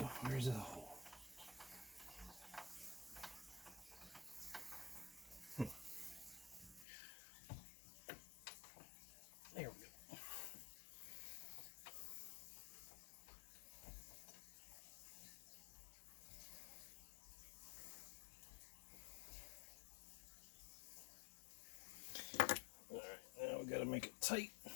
Where's the hole? There we go. All right, now we got to make it tight.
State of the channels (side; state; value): right; drops out; at 6.9 s